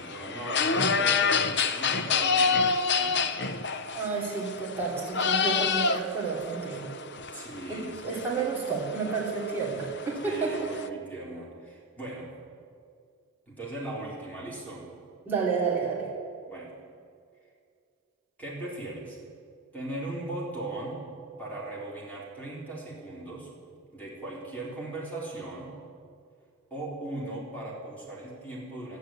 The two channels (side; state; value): both; normal; correlation -0.04